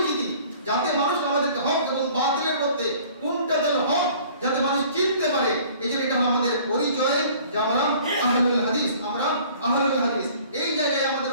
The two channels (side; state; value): both; inverted; correlation -0.52